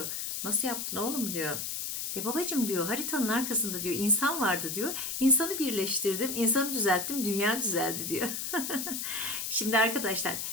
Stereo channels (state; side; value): noise; left; hiss, 3 dB below the sound